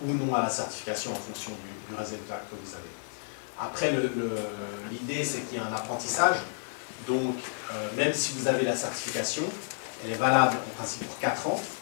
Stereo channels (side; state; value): right; silent; 57 dB below the other